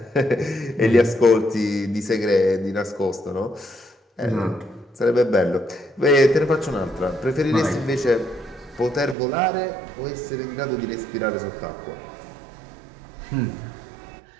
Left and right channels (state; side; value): drops out; left; at 9.2 s